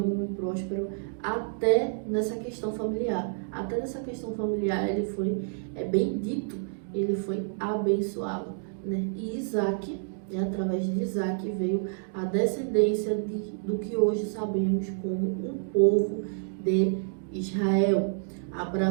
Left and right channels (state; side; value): silent; left; digital silence